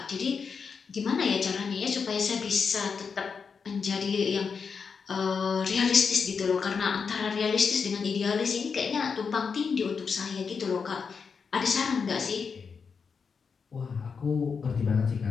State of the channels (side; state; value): right; quieter; 5.7 dB